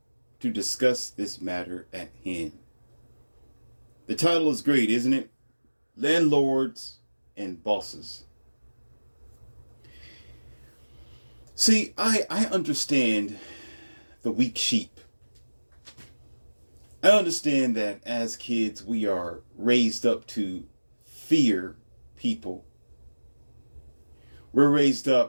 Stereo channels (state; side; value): inverted; both; correlation -1.00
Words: to discuss this matter at hand. The title is great, isn't it? Landlords and Bosses. See, I understand the weak sheep. I understand that as kids we are raised up to fear people. We're raised